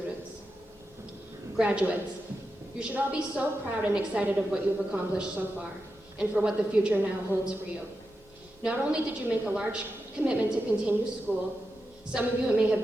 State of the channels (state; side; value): normal; both; correlation 0.89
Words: Graduates, you should all be so proud and excited of what you've accomplished so far, and for what the future now holds for you. Not only did you make a large commitment to continue school, some of you it may have